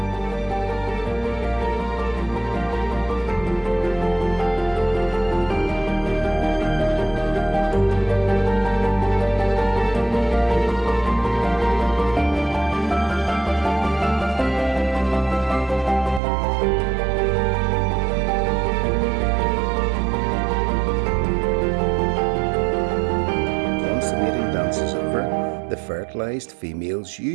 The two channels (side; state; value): left; drops out; at 16.2 s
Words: The fertilised females